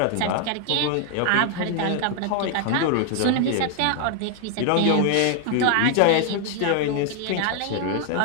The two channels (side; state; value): both; different; correlation 0.00